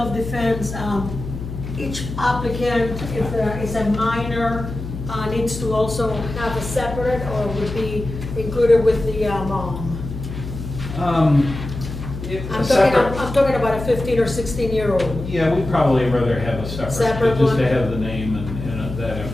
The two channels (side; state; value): left; noise; hum, 8 dB below the sound